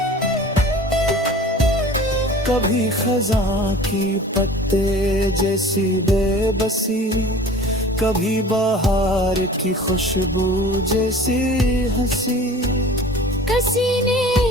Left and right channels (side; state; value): both; normal; correlation 0.43